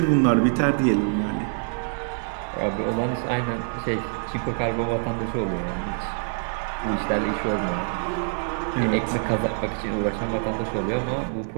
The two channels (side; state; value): left; silent; 62 dB below the other